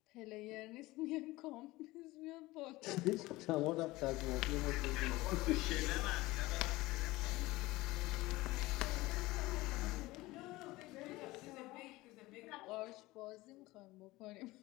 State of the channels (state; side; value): quieter; right; 19.7 dB